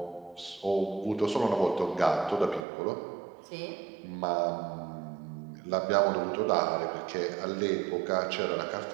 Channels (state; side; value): drops out; left; at 2.6 s